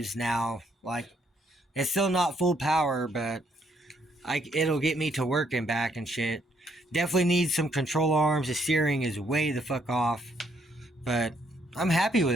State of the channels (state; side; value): normal; both; correlation 0.71